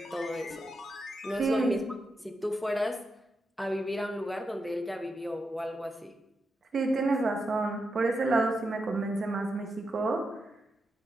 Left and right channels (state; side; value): normal; both; correlation 0.86